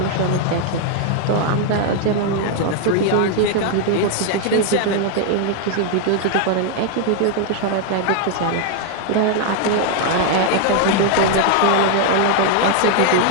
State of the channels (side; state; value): both; different; correlation 0.00